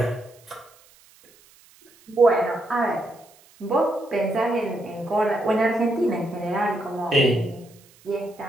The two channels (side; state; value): right; noise; hiss, 28 dB below the sound